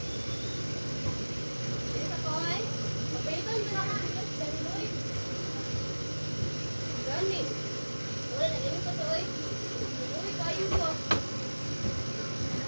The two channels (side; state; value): both; inverted; correlation -1.00